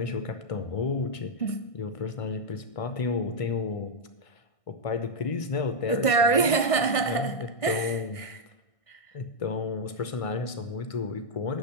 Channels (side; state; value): right; late; 1.6 ms